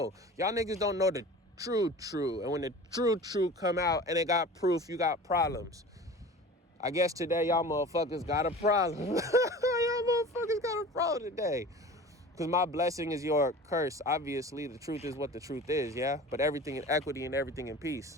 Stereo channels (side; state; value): both; normal; correlation 0.38